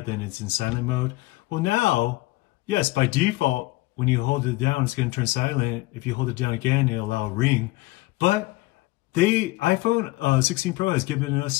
then it's in silent mode. Well now, yes, by default, when you hold it down, it's going to turn silent. If you hold it down again, it'll allow a ring. But iPhone 16 Pro has given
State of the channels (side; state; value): right; quieter; 20.5 dB